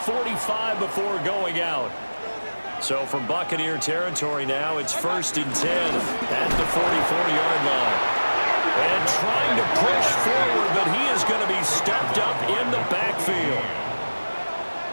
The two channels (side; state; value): both; inverted; correlation -1.00